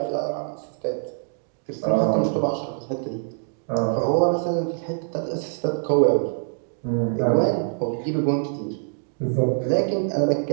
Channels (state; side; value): silent; left; digital silence